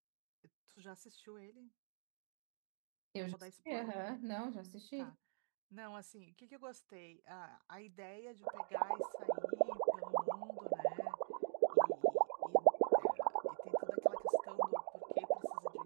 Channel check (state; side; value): silent; left; digital silence